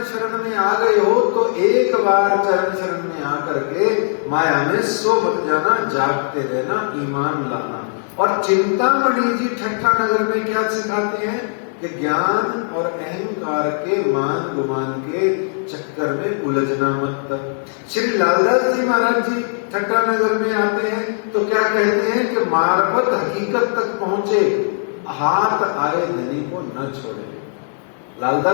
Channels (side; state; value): right; silent; digital silence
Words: शरण में आ गए हो तो एक बार चरण शरण में आकर के माया में सो मत जाना, जागते रहना, ईमान लाना। और चिंतामणि जी ठट्ठा नगर में क्या सिखाते हैं कि ज्ञान और अहंकार के मान गुमान के चक्कर में उलझना मत। श्री लालदास जी महाराज जी ठट्ठा नगर में आते हैं तो क्या कहते हैं कि मार्फत हकीकत तक पहुंचे, हाथ आए धनी को न छोड़े।